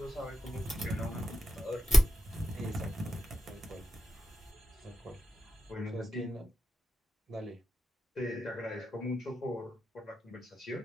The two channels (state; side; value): normal; both; correlation 0.89